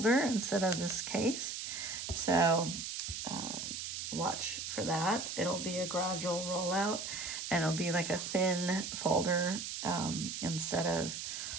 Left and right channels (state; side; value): noise; right; hiss, 5 dB below the sound